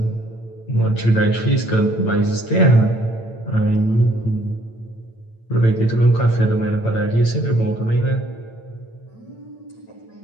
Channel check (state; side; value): late; right; 8.9 ms